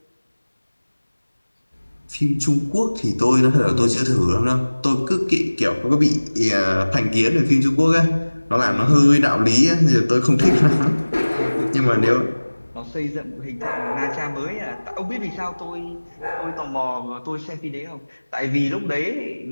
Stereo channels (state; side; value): inverted; both; correlation -1.00